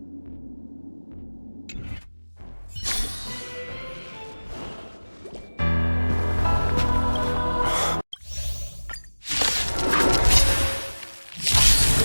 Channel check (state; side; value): inverted; both; correlation -1.00